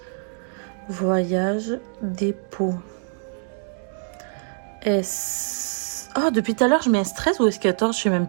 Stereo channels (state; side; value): silent; left; digital silence